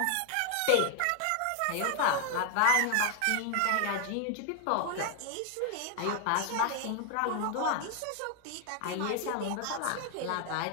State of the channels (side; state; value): both; different; correlation 0.00